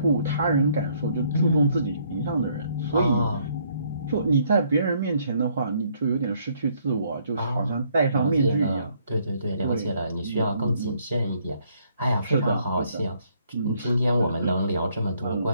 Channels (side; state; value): both; inverted; correlation -0.68